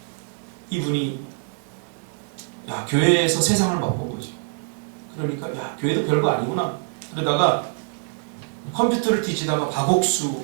이분이 교회에서 세상을 맛본 거죠. 그러니까 교회도 별거 아니구나. 그러다가 컴퓨터를 뒤지다가 박옥수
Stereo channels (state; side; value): silent; left; 62 dB below the other